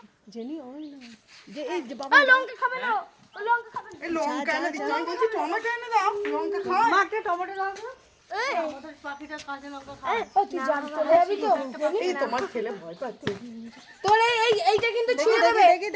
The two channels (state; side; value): identical; both; correlation 1.00